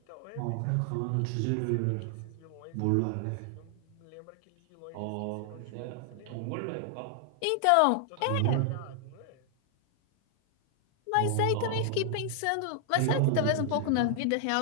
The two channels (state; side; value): different; both; correlation 0.00